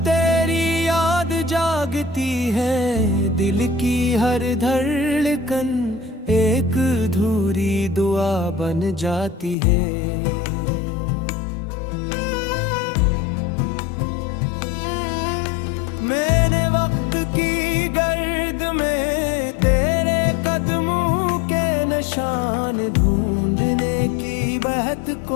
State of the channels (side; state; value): right; drops out; at 9.6 s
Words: तेरी याद जागती है, दिल की हर धड़कन एक अधूरी दुआ बन जाती है। मैंने वक्त की गर्द में तेरे कदमों के निशान ढूंढने की बहुत